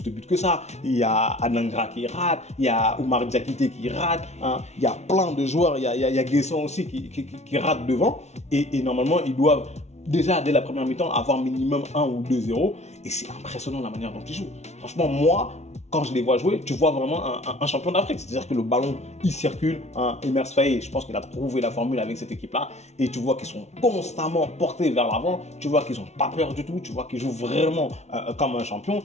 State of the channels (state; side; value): late; right; 0.32 ms